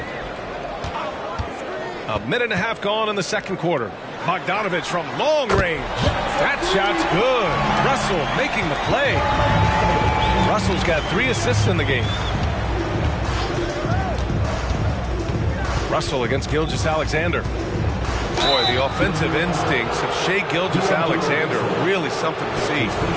A minute and a half gone in the second quarter. Bogdanovich from long range. That shot's good. Russell making the play. Russell's got 3 assists in the game. Russell against Gilgeous-Alexander. Boy, the offensive instincts of Shai Gilgeous-Alexander are really something to see.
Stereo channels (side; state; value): both; identical; correlation 1.00